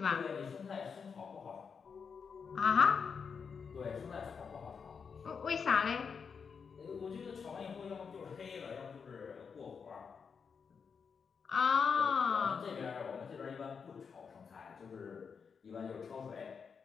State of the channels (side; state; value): right; quieter; 6.0 dB